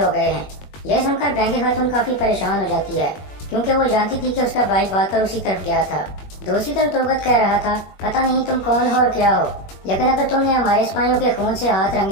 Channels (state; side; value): late; right; 21 ms